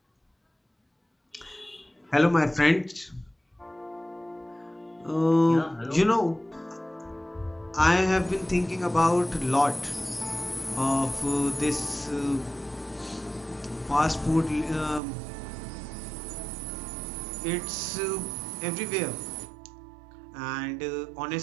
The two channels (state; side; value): drops out; left; at 15.0 s